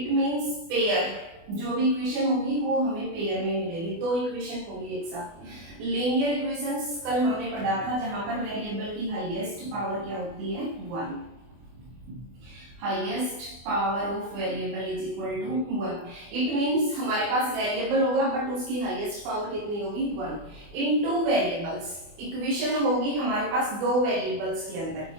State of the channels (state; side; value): late; left; 24 ms